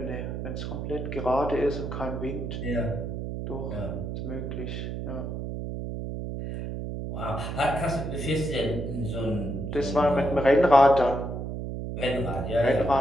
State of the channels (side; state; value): right; noise; hum, 5 dB below the sound